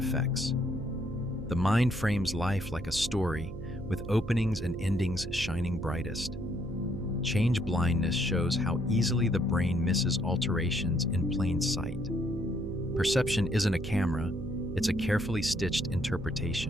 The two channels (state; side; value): noise; right; hum, 10 dB below the sound